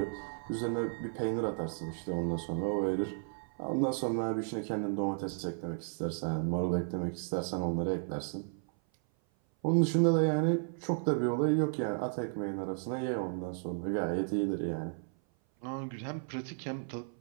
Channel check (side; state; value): left; silent; 55 dB below the other